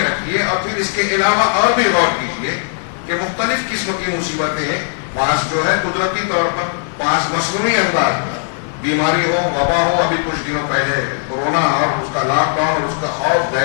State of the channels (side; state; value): right; silent; digital silence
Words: رکھیے اور پھر اس کے علاوہ اور بھی غور کیجیے کہ مختلف قسم کی مصیبتیں، بعض جو ہے قدرتی طور پر، بعض مصنوعی انداز میں، بیماری ہو، وبا ہو، ابھی کچھ دنوں پہلے کورونا اور اس کا لاک ڈاؤن اور اس کا خوف،